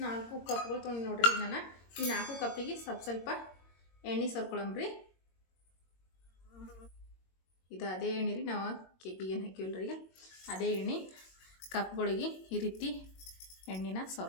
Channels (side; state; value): right; late; 22 ms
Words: 4 ಕಪ್ಗಳು ತೊಗೊಂಡು ನೋಡ್ರಿ. ನಾನು ಈ 4 ಕಪ್ಪಿಗೆ ಸ್ವಲ್ಪ ಎಣ್ಣೆ ಸರ್ಕೊಳಮ್ರಿ. ಇದು ಅದೇ ಎಣ್ಣೆ ರೀ, ನಾವು ಕೇಕಿಗೆ ಏನು ಹಾಕಿವಲ್ರಿ. ಈಗ ಅದೇ ಎಣ್ಣೆ ಕಪ್ಗಳಿಗೆ ಈ ರೀತಿ ಎಣ್ಣೆನ